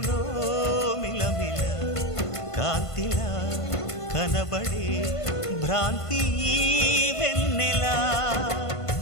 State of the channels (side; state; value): right; late; 1.5 ms